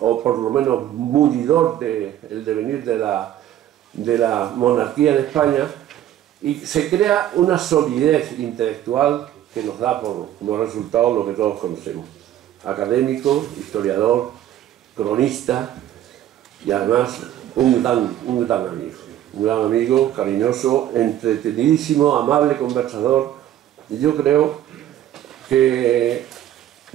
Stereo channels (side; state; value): left; quieter; 12.0 dB